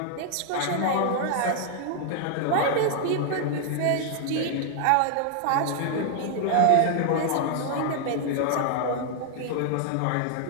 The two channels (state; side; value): different; both; correlation 0.00